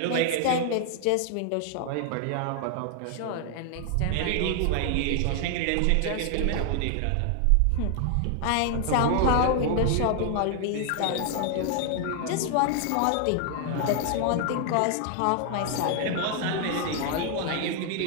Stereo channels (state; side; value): different; both; correlation 0.00